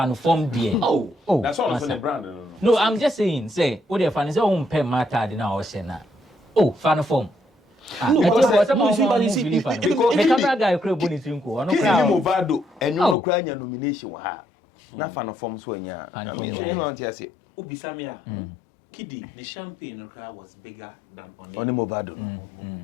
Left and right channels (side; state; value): right; drops out; at 13.2 s